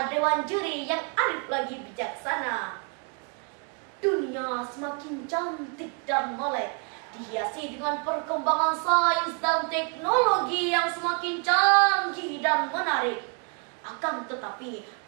dewan juri yang arif lagi bijaksana. Dunia semakin cantik dan molek, dihiasi dengan perkembangan sains dan teknologi yang semakin canggih dan menarik. Akan tetapi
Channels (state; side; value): quieter; left; 39.1 dB